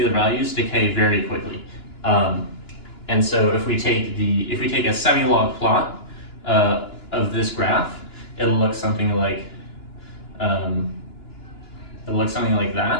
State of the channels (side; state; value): right; late; 2.9 ms